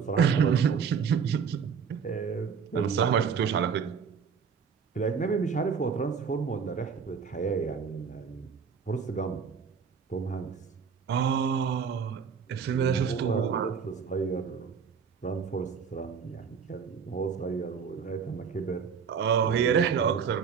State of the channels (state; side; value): quieter; left; 6.4 dB